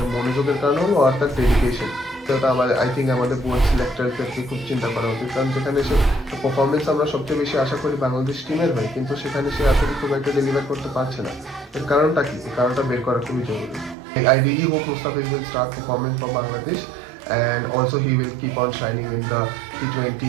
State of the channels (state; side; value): drops out; left; at 14.0 s